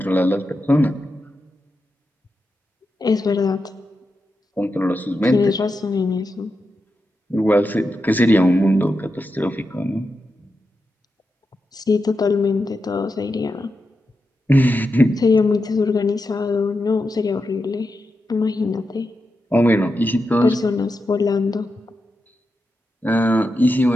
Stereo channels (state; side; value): normal; both; correlation 0.88